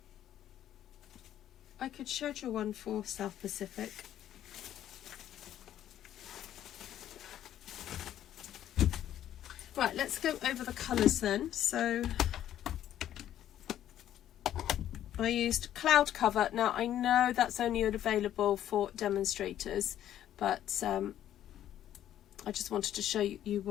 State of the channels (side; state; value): right; quieter; 11.5 dB